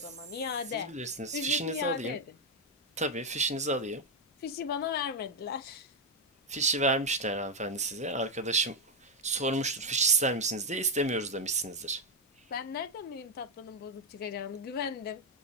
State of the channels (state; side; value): normal; both; correlation 0.02